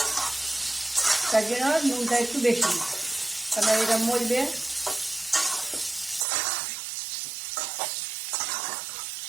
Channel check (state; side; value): drops out; left; at 6.2 s